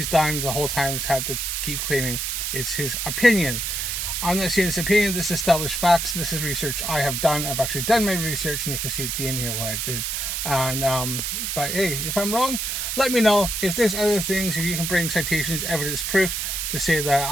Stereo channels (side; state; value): right; noise; hiss, 2 dB below the sound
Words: done the whole time is had to keep claiming it's his opinion. I'm not saying it's opinion, this is established facts. This is research I have done. I've actually done my research, and you can see at the end here what I did. And but hey, if I'm wrong, let me know. If there's other things, if you can bring citations, evidence, proof to say